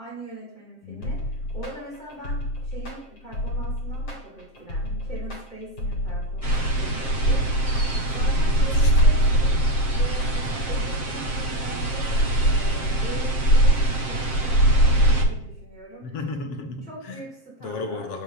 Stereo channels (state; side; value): late; right; 7.5 ms